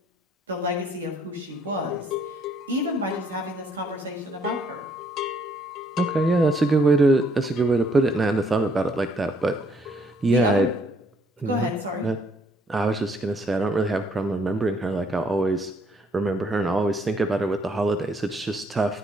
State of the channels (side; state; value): both; normal; correlation 0.67